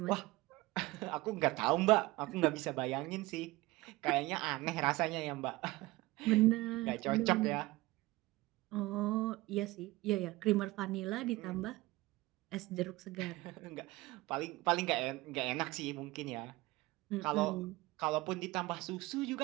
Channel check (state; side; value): quieter; left; 20.0 dB